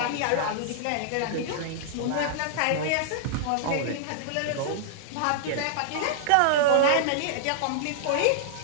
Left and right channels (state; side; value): different; both; correlation -0.01